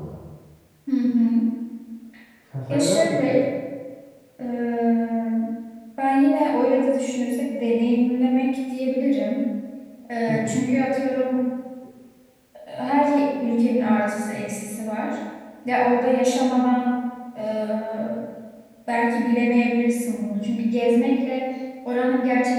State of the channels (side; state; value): both; identical; correlation 1.00